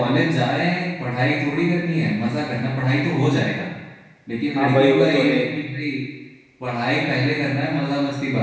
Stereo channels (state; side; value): identical; both; correlation 1.00